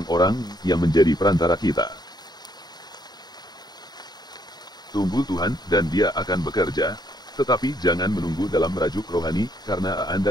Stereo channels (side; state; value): right; late; 0.20 ms